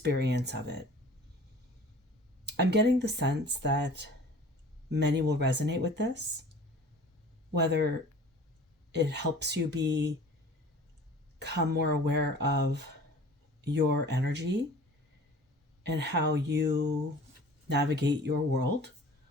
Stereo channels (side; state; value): both; normal; correlation 0.45